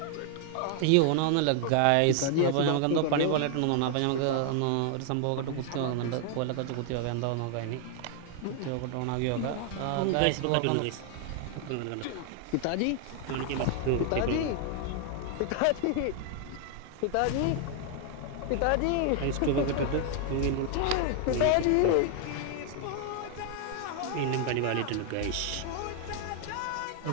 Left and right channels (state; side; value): different; both; correlation 0.00